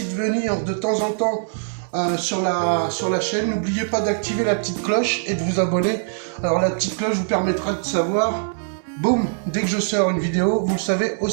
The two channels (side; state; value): left; silent; 64 dB below the other